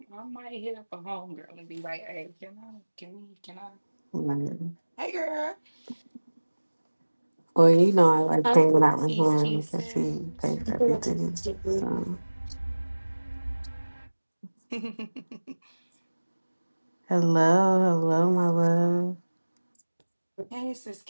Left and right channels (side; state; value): both; inverted; correlation -1.00